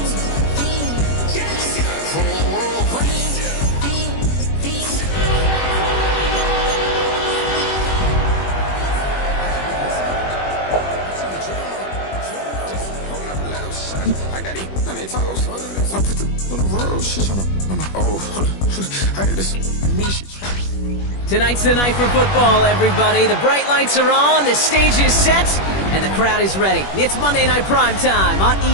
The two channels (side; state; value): right; late; 21 ms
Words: I got it on their toes. So I put them on the road. She trying to. I got this. Me, she trying. Tonight's the night for football, everybody. The bright lights are on, the stage is set, and the crowd is ready. It's Monday Night Primetime on